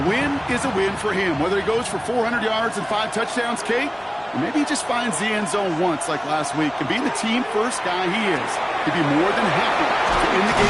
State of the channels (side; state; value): both; identical; correlation 1.00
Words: win is a win for him. Whether he goes for 400 yards and 5 touchdowns, Kate, or maybe he just finds the end zone once like last week. And being the team-first guy he is, he'd be more than happy to end the